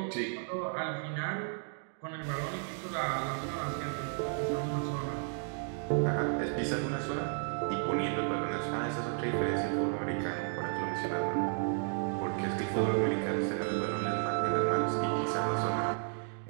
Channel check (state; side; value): silent; left; 56 dB below the other